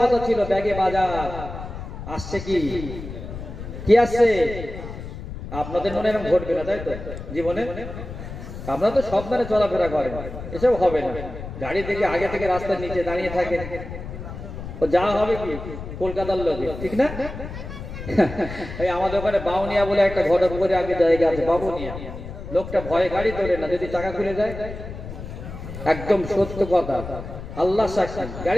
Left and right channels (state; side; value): noise; left; rumble, 10 dB below the sound